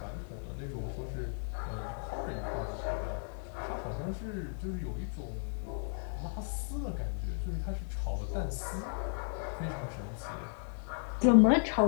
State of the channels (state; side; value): silent; right; 55 dB below the other